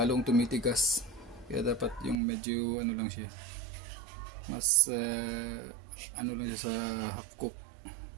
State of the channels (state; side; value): drops out; left; at 2.2 s